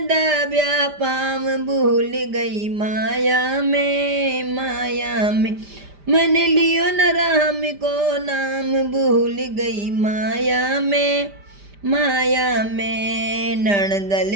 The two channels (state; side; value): late; left; 5.0 ms